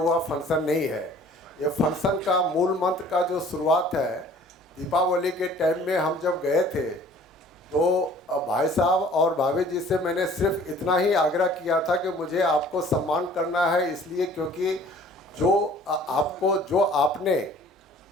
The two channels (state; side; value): normal; both; correlation 0.51